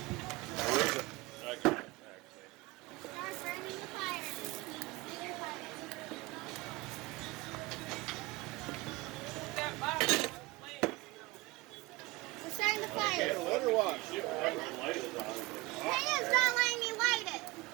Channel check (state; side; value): quieter; left; 21.7 dB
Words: Where is it? I can't actually. Start burning the fire. We're starting the fire. Can't let her watch. Shit, whatever the light is on. Payne's not letting me light it.